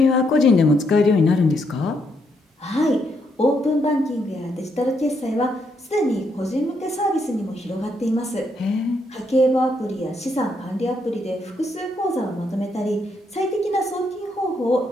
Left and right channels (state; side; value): normal; both; correlation 0.76